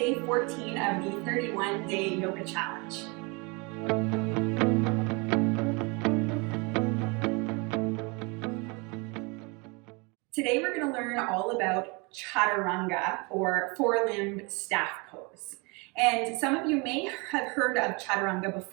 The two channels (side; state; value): left; quieter; 29.6 dB